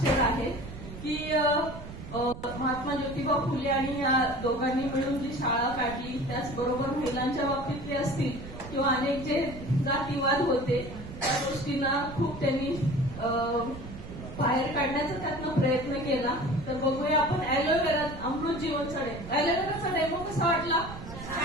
आहेत की महात्मा ज्योतिबा फुले आणि या दोघांनी मिळून जी शाळा काढली, त्याचबरोबर महिलांच्या बाबतीतले असतील किंवा अनेक जे जातीवाद होते त्या गोष्टींना खूप त्यांनी बाहेर काढण्याचा त्यातनं प्रयत्न केला. तर बघूया आपण ॲलोवेरा अमृत जीवनचा डेमो. ॲलोवेराचा डेमो कसा वाटला?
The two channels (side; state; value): right; noise; rumble, 12 dB below the sound